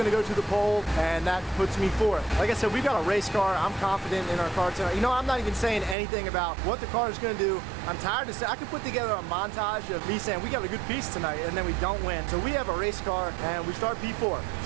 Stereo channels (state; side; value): drops out; left; at 6.0 s